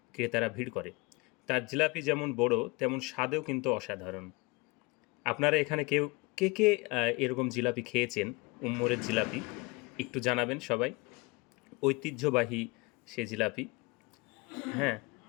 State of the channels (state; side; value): quieter; right; 25.9 dB